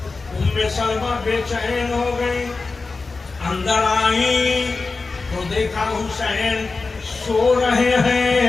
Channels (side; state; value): right; quieter; 4.0 dB